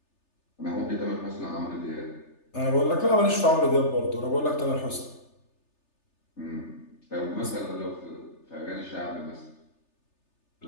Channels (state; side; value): late; right; 3.3 ms